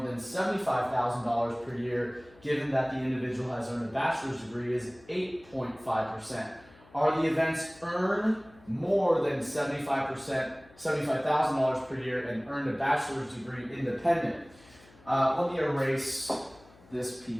than $75,000 per year, given that the individual has earned a bachelor's degree, is 8.5%. Are the events earn more than $75,000 per year and earned a bachelor's degree independent? Let me erase this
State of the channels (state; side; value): noise; left; hum, 26 dB below the sound